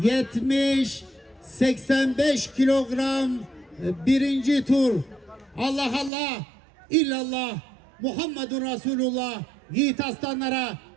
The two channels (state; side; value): drops out; left; at 6.1 s